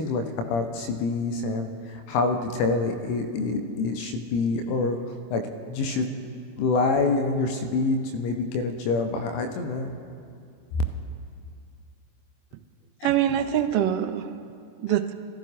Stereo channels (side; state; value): right; late; 26 ms